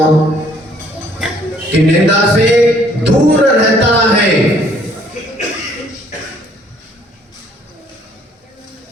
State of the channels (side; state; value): both; normal; correlation 0.62